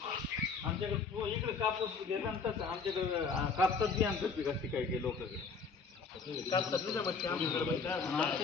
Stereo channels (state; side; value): quieter; right; 4.9 dB